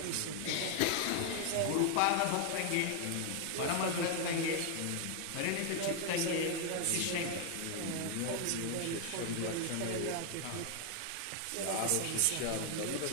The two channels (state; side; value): different; both; correlation 0.00